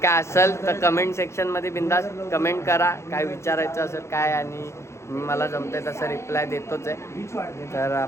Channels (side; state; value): right; late; 0.13 ms